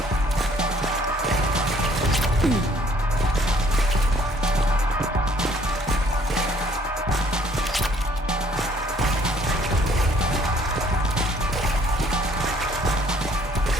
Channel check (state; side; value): normal; both; correlation 0.61